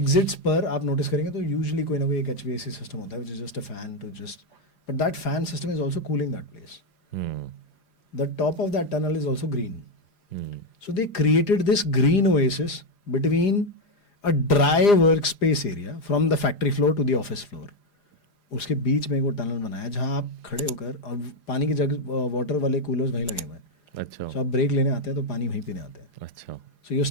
पर आप नोटिस करेंगे तो यूजुअली कोई ना कोई एक HVAC सिस्टम होता है which is just a fan to just, but that fan system is also cooling that place. Hmm. The top of that tunnel is also green. Hmm. So they created this green oasis between a dry workspace area from the factory floor to the office floor. उसके बीच में वो टनल बनाया जहाँ आप खड़े होकर, और पानी की जग वाटर वाले कूलर्स वहीं लगे हुए हैं. अच्छा. So आप ब्रेक लेने आते हैं तो पानी वहीं पीने आते हैं. अच्छा. So you're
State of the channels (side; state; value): right; late; 4.9 ms